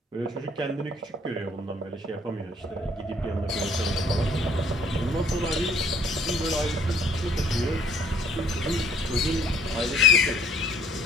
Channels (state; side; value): normal; both; correlation 0.59